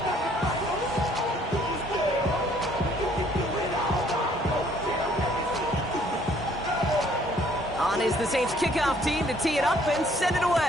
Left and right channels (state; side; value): normal; both; correlation 0.62